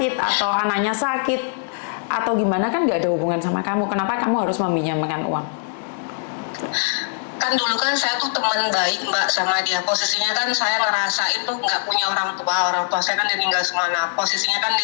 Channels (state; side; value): silent; right; digital silence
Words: atau anaknya sakit atau gimana, kan nggak ada hubungan sama kamu, kenapa kamu harus meminjamkan uang? Kan dulu kan saya tuh teman baik Mbak sama dia, posisinya kan saya ngerasain tuh nggak punya orang tua saya kan meninggal semua. Nah posisinya kan